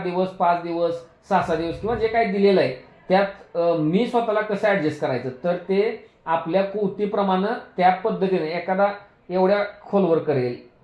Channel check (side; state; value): both; identical; correlation 1.00